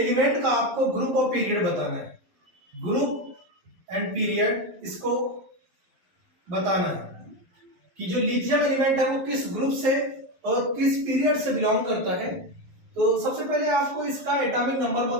का आपको ग्रुप ऑफ पीरियड बताना है। ग्रुप एंड पीरियड इसको बताना है कि जो लिथियम एलिमेंट है वो किस ग्रुप से और किस पीरियड से बिलोंग करता है। तो सबसे पहले आपको इसका एटॉमिक नंबर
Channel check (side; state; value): left; late; 11 ms